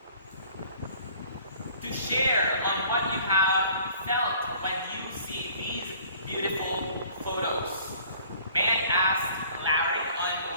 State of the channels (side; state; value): both; inverted; correlation -0.53